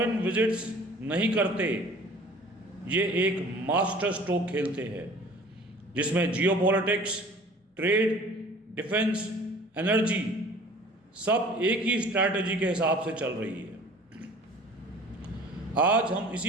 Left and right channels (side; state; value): both; normal; correlation 0.47